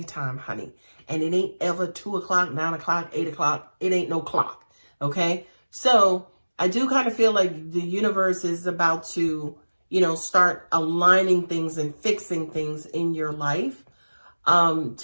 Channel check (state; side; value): inverted; both; correlation -1.00